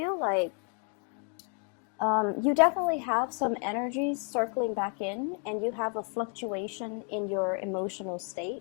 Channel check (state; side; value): quieter; right; 38.6 dB